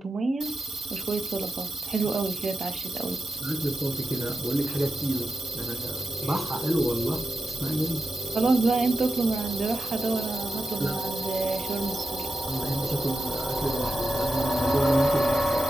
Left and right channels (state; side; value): normal; both; correlation 0.91